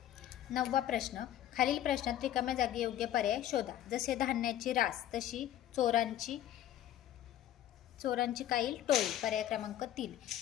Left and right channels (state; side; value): quieter; right; 12.0 dB